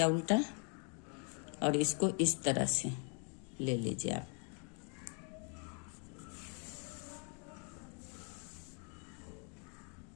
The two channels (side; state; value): right; quieter; 38.7 dB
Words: उल्टा, और इसको इस तरह से ले लीजिए आप।